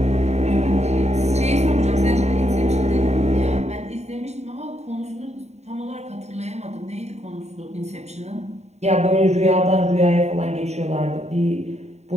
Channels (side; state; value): left; late; 0.32 ms